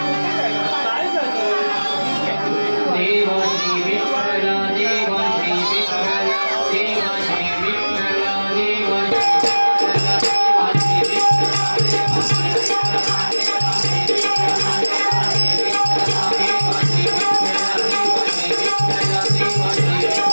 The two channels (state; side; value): inverted; both; correlation -1.00